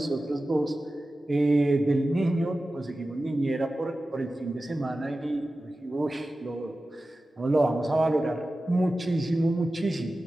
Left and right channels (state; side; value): normal; both; correlation 0.95